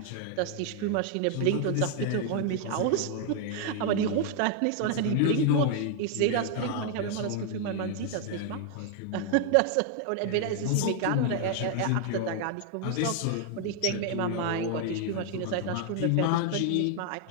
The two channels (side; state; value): both; different; correlation 0.00